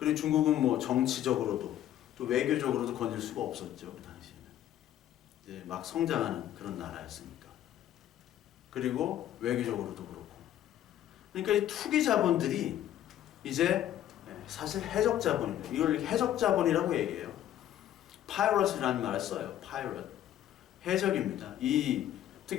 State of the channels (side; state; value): right; quieter; 11.8 dB